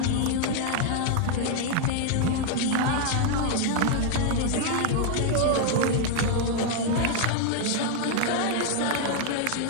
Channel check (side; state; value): both; different; correlation 0.00